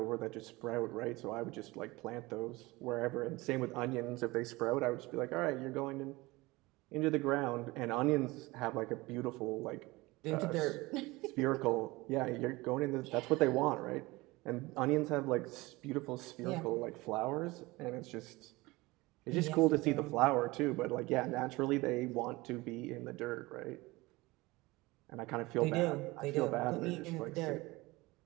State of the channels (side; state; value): left; quieter; 21.6 dB